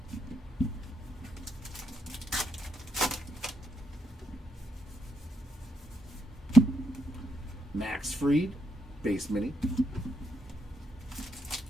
Max Fried base mini.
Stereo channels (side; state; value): both; normal; correlation 0.78